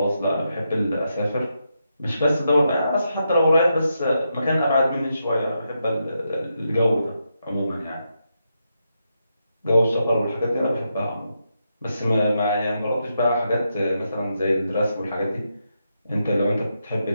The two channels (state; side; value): inverted; both; correlation -0.84